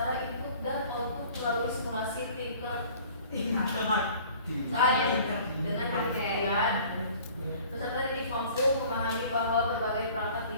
input dan output melalui simulasi tingkat dengan pengertian peserta didik mampu memahami bahwa berbagai perangkat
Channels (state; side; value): inverted; both; correlation -0.49